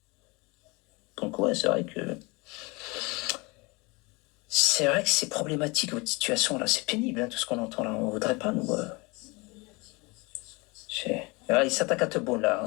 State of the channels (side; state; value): right; quieter; 26.4 dB